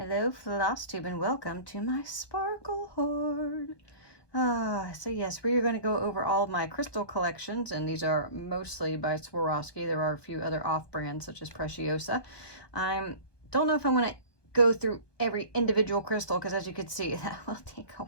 Flosstube and welcome to my sparkle hoard. So yes, we are going to go over all of my crystal collections, and these are mostly by Swarovski. There are a few other off-brands such as Preciosa. I don't know if I'm going to go through every individual crystal because, as you can see, that will take a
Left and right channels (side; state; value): right; late; 1.2 ms